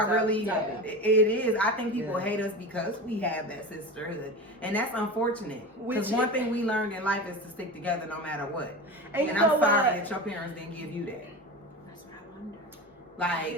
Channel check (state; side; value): normal; both; correlation 0.28